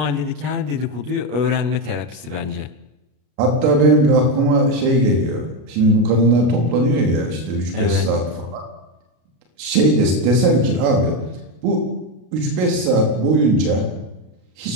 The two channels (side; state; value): left; late; 33 ms